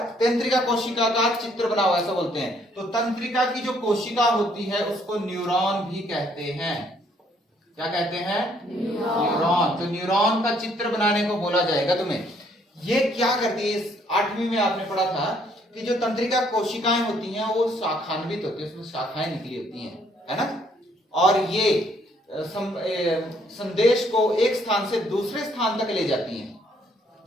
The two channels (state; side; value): normal; both; correlation 0.66